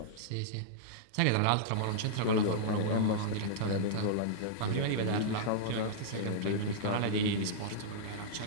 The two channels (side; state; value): both; different; correlation -0.02